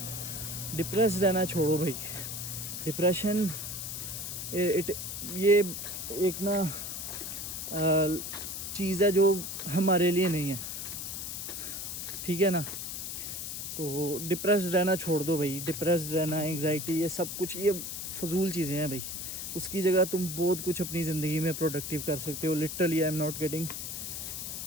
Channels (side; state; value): left; noise; hiss, 6 dB below the sound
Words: डिप्रेस रहना छोड़ो भाई। डिप्रेशन ये एक ना चीज़ है जो हमारे लिए नहीं है, ठीक है ना। तो डिप्रेस रहना छोड़ दो भाई। डिप्रेस रहना, एंग्जाइटी, ये सब कुछ ये फजूल चीज़ें हैं भाई। उसकी जगह तुम बहुत कुछ अपनी ज़िंदगी में प्रोडक्टिव कर सकते हो। Literally I am not kidding.